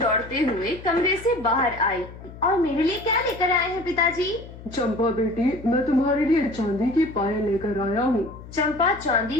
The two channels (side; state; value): left; noise; hum, 16 dB below the sound